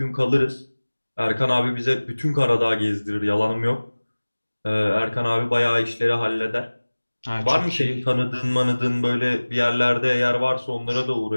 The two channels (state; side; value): inverted; both; correlation -1.00